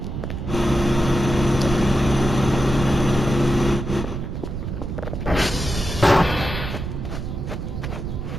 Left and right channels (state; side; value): noise; right; rumble, 5 dB below the sound